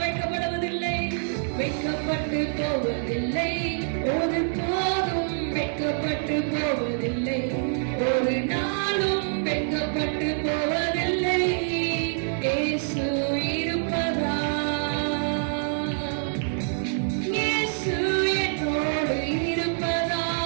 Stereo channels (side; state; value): left; silent; 61 dB below the other